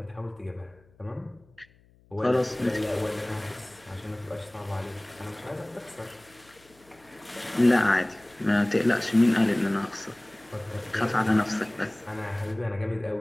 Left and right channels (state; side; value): noise; left; hum, 30 dB below the sound